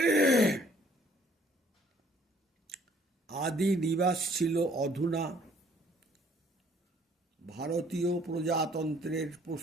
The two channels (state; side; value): normal; both; correlation 0.61